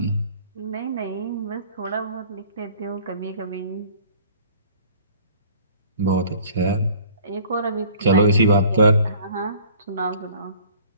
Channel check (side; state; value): both; inverted; correlation -0.52